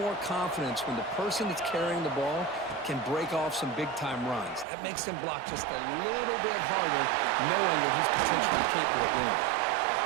confidence when the person that's carrying the ball can break off some big-time runs. That makes them block just a little bit harder, knowing what he's potentially capable of doing.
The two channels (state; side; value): drops out; left; at 4.7 s